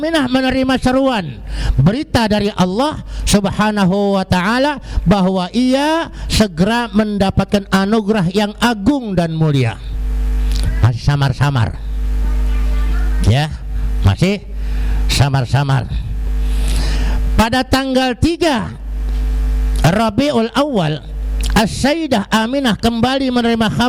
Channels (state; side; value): identical; both; correlation 1.00